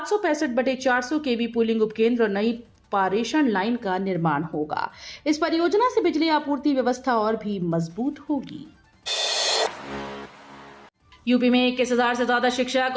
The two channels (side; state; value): both; identical; correlation 1.00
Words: केवी पुलिंग उपकेंद्र और नई पारेषण लाइन का निर्माण होगा। इस परियोजना से बिजली आपूर्ति व्यवस्था और भी मजबूत होगी। यूपी में 21,000 से ज्यादा शिक्षक